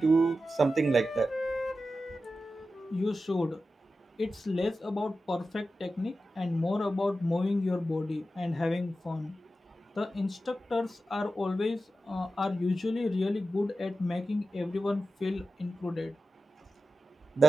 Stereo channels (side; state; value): both; normal; correlation 0.92